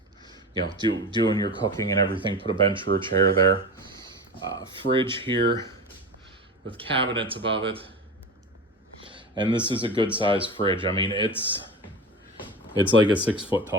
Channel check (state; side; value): normal; both; correlation 0.29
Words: your cooking and everything. Put a bench or a chair there. Fridge here with cabinets above it. And this is a good sized fridge. I mean, it's like a 6 foot